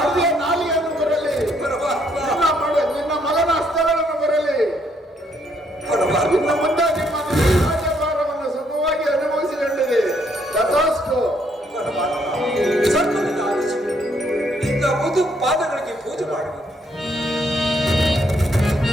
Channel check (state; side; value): normal; both; correlation 0.71